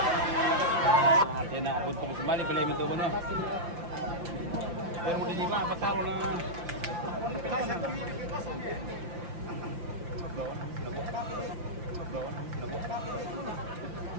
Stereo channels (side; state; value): left; late; 5.8 ms